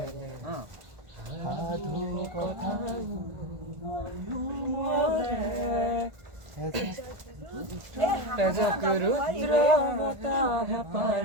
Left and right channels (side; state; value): left; late; 1.4 ms